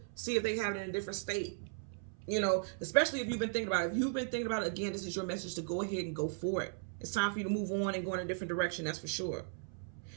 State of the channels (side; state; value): left; silent; 53 dB below the other